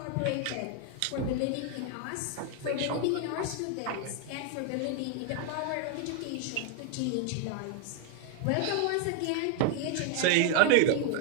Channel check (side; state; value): both; different; correlation 0.00